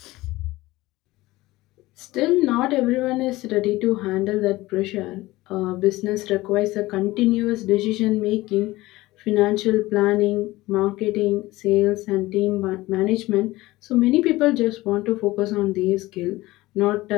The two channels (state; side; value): quieter; right; 18.8 dB